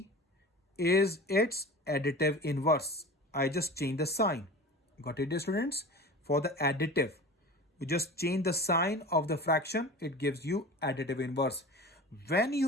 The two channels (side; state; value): both; normal; correlation 0.35